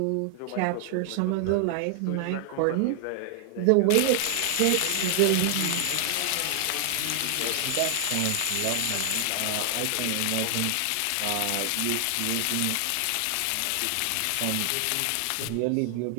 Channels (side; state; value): both; different; correlation 0.00